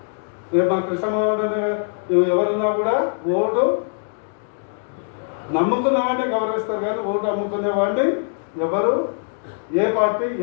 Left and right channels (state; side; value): silent; right; 64 dB below the other